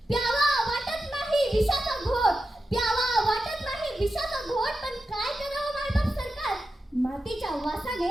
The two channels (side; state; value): both; normal; correlation 0.90